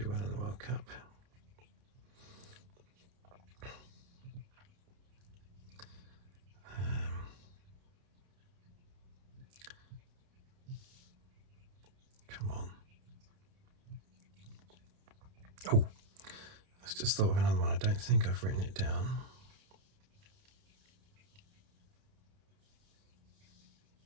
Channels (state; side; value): late; left; 30 ms